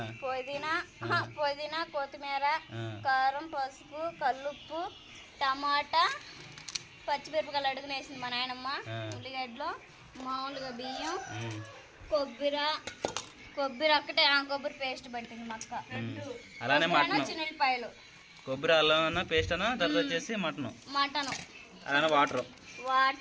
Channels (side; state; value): both; identical; correlation 1.00